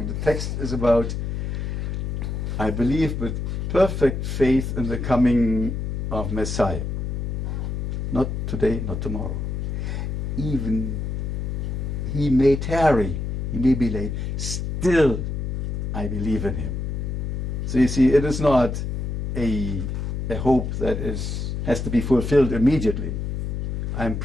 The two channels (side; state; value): left; noise; hum, 3 dB below the sound